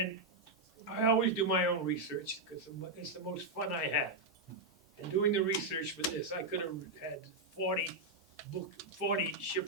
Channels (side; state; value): both; normal; correlation -0.02